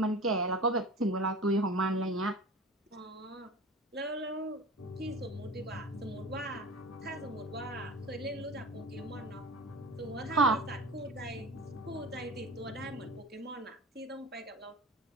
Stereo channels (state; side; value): normal; both; correlation 0.35